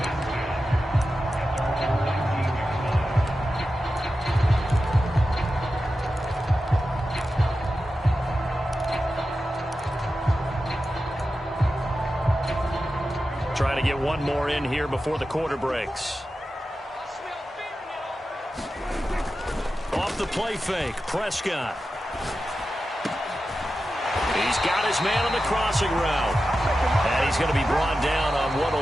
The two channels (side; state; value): both; normal; correlation 0.92